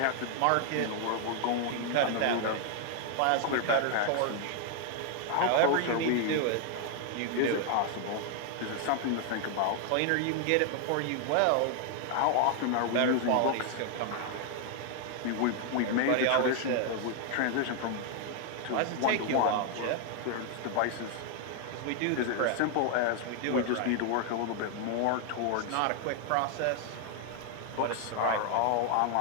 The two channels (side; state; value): both; different; correlation 0.00